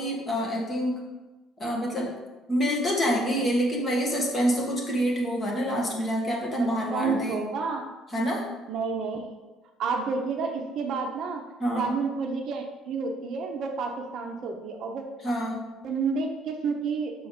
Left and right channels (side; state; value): both; normal; correlation 0.66